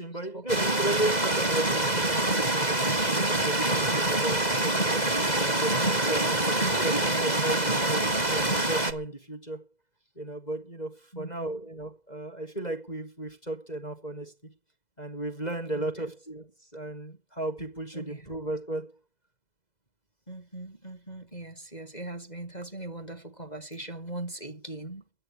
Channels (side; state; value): right; late; 2.0 ms